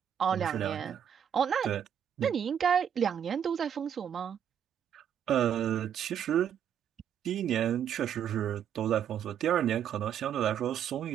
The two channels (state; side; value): quieter; left; 9.0 dB